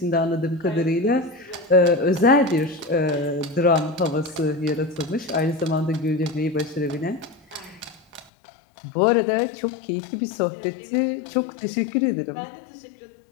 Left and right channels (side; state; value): right; drops out; at 8.3 s